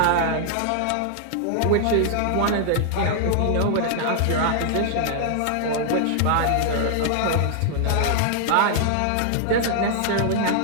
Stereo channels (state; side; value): different; both; correlation 0.00